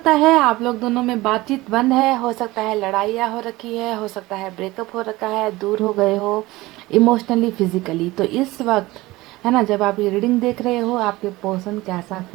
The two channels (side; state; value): left; quieter; 19.6 dB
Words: है आप लोग दोनों में बातचीत बंद है, हो सकता है लड़ाइयाँ हो रखी है, हो सकता है ब्रेकअप हो रखा है, दूर हो गए हो इमोशनली फिजिकली। तो इस वक्त है ना, जब आप ये रीडिंग देख रहे हो आपके पर्सन कैसा